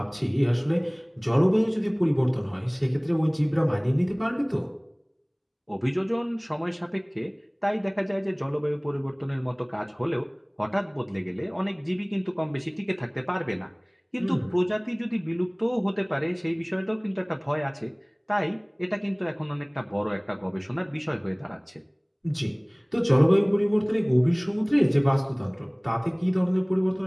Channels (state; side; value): identical; both; correlation 1.00